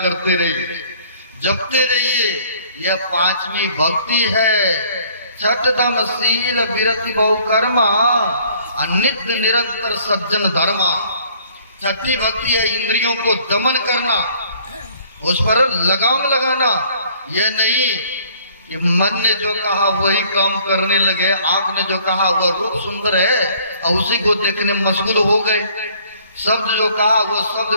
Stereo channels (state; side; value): inverted; both; correlation -0.58